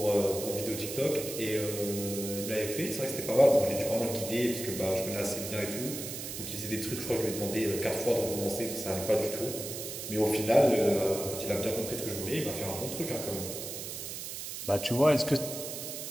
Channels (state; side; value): noise; right; hiss, 7 dB below the sound